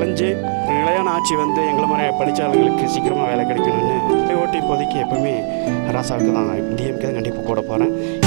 நிலையான ஆட்சி வந்து எங்களை மாதிரி படித்த ஆளுங்களுக்கு சீக்கிரமாக வேலை கிடைக்கணும்னு ஓட்டு இப்போதைக்கு எப்போவுமே ராசாவுக்கு தான், டிஎம்கே தான் கண்டிப்பாக போட போகிறேன்.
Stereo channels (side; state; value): left; silent; digital silence